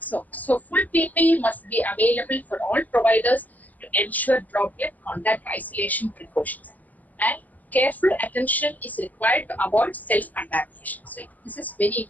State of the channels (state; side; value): late; right; 0.080 ms